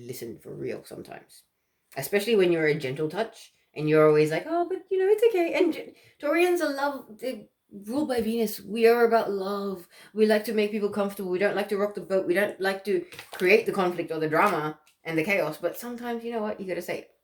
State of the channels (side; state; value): both; identical; correlation 1.00